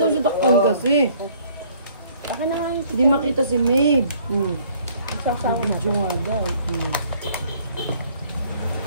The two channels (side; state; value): both; inverted; correlation -0.60